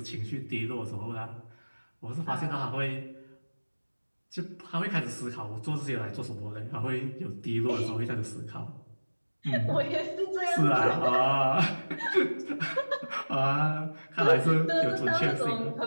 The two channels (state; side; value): inverted; both; correlation -1.00